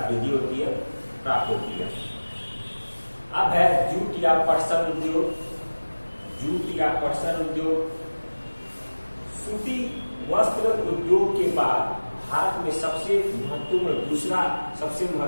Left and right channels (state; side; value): inverted; both; correlation -1.00